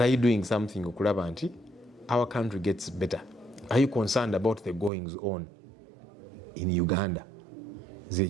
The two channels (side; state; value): left; drops out; at 4.9 s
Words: are you doing something okulaba nti our country gets better are you concerned about the goings on in Uganda